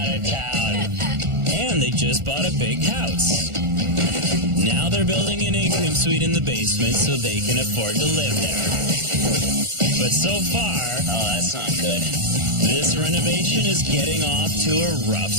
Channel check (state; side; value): late; left; 1.4 ms